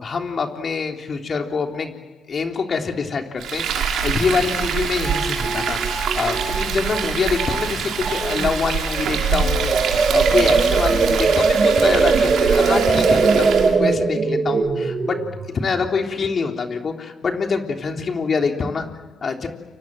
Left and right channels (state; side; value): normal; both; correlation 0.79